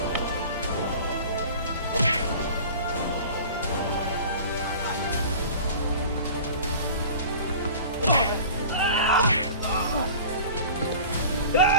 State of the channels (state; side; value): inverted; both; correlation -0.41